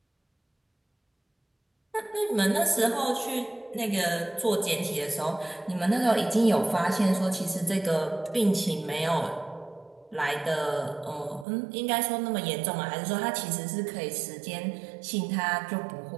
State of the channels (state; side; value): drops out; left; at 11.5 s